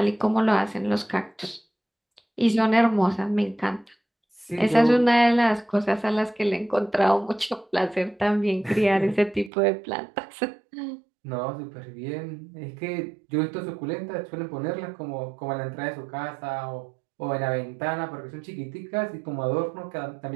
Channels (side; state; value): left; drops out; at 9.5 s